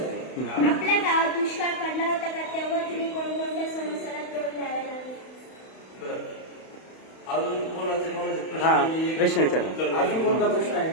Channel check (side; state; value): right; late; 31 ms